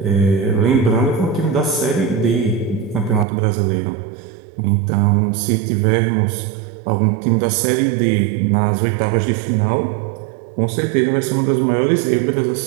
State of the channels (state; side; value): drops out; left; at 3.2 s